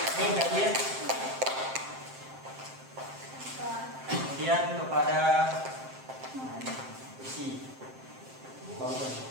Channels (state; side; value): late; left; 7.6 ms